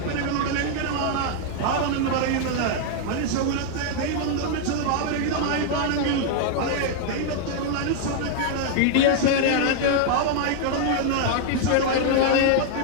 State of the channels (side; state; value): both; different; correlation 0.00